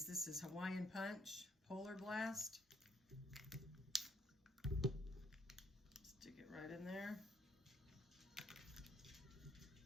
This is Hawaiian Punch Polar Blast. Stick it right in there.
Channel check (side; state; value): both; normal; correlation 0.68